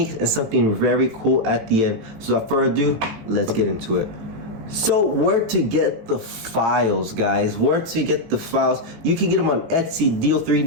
and something very cool at the end. So without further ado, let's get into it. So where to get the files, guys? Where to get the files? You can get them on Etsy,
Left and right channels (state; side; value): late; left; 18 ms